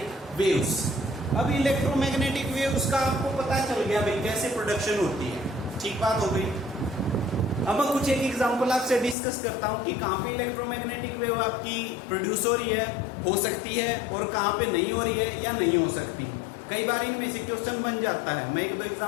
waves. अब electromagnetic waves का आपको पता चल गया भाई कैसे प्रोडक्शन होती है, ठीक बात हो गई। अब मैं कुछ एक एग्जांपल आपसे डिस्कस करता हूं कि कहां पे इलेक्ट्रोमैग्नेटिक वेव आपकी प्रोड्यूस हो रही है, हो सकती है, और कहां पे नहीं हो रही है या नहीं हो सकती। कई बार इनमें से क्वेश्चन बन जाता है। मैं एक दो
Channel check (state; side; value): drops out; right; at 9.2 s